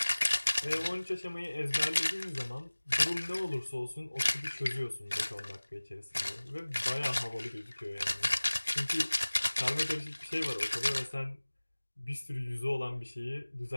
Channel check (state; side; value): inverted; both; correlation -1.00